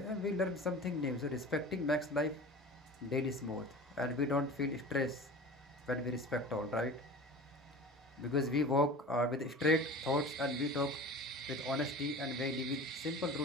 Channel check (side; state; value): both; normal; correlation 0.37